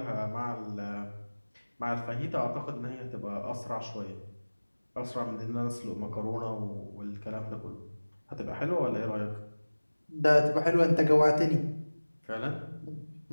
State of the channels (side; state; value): both; inverted; correlation -1.00